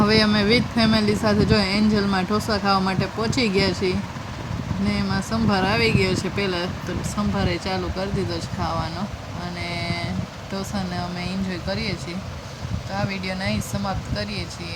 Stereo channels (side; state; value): both; identical; correlation 1.00